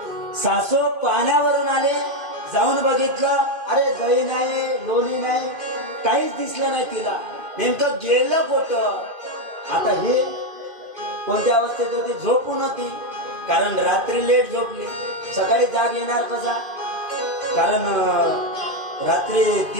सासू पाण्यावरून आले, जाऊन बघितलं, अरे दही नाही, लोणी नाही, काहीच दिसलं नाही तिला. नेमकं गेलं कुठं? आता हे कोणत्या अवस्थेत होती? झोपून होती. कारण रात्री लेट झोपली, सकाळी जाग येणार कसा? कारण रात्री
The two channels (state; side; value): late; left; 2.5 ms